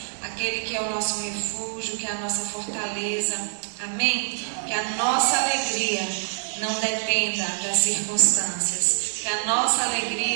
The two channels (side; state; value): left; silent; digital silence